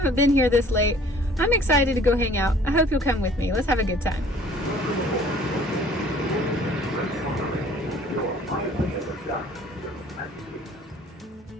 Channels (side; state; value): both; normal; correlation 0.53